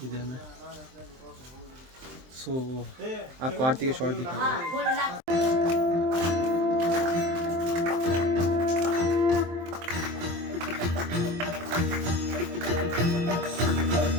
इधर में। सो आपको आरती के शॉट दिखा रहे हैं।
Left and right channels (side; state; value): left; late; 23 ms